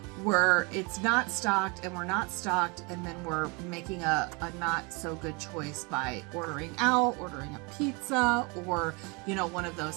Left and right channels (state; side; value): quieter; left; 30.0 dB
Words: where it's not stocked and we're not stocked, and then we're making a not so good choice by ordering out, ordering a pizza, or one of